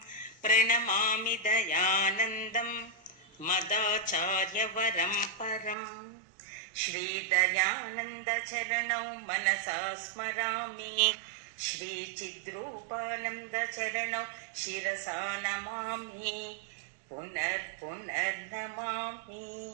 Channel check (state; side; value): drops out; left; at 5.8 s